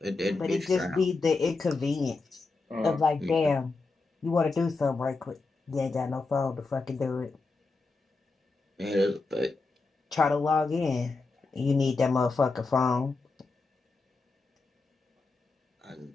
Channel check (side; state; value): right; quieter; 3.8 dB